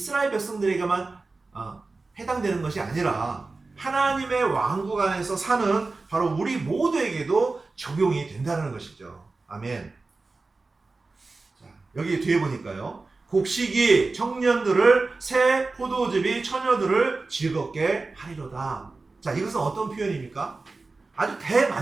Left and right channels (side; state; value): left; quieter; 3.7 dB